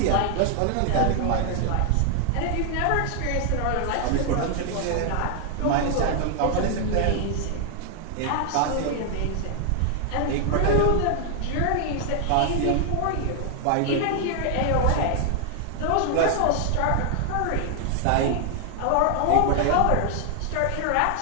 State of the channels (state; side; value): different; both; correlation 0.00